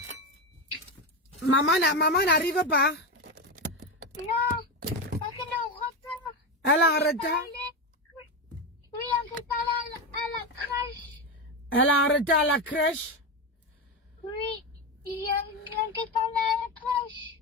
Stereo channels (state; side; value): normal; both; correlation 0.15